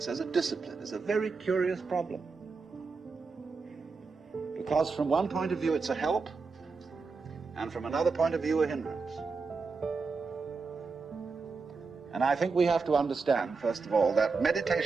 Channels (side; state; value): left; quieter; 4.6 dB